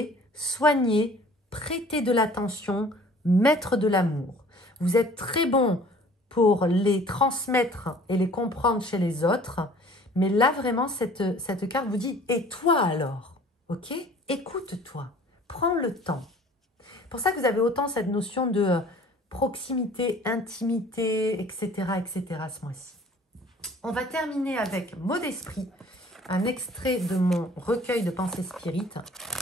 soigner, prêter de l'attention, mettre de l'amour. Vous êtes très bon pour les transmettre et les comprendre chez les autres, mais là vraiment cette carte vous dit « et toi alors ?» Ok? Écoute-toi, prends le temps. C'est pour ça que vous avez autant cette notion de proximité, intimité, etc. ce mois-ci. On va terminer avec mot d'esprit, un extrait de mon recueil de pensées spirites.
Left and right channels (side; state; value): both; normal; correlation 0.50